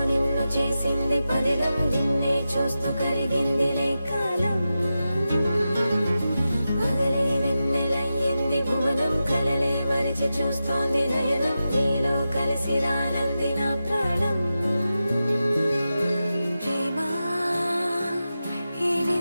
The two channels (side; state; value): both; inverted; correlation -0.92